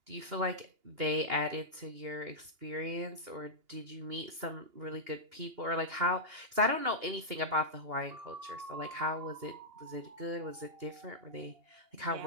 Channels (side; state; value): left; late; 2.8 ms